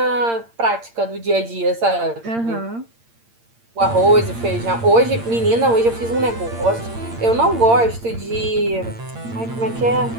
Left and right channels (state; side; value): late; left; 8.7 ms